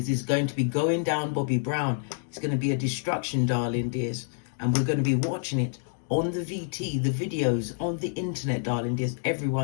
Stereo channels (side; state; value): right; silent; digital silence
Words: is going to be going down Bobby Brown. It's going to be a destruction, darling dears. And we're going to be watching it on the VT, the videos, on the internet, darling dears.